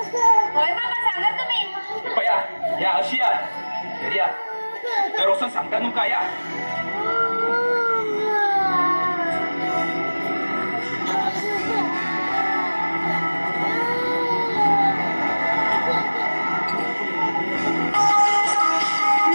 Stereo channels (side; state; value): both; inverted; correlation -1.00